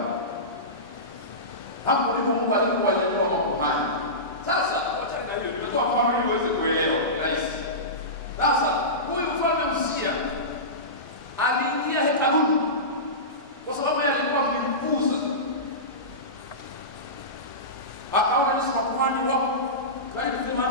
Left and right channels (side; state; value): both; normal; correlation -0.20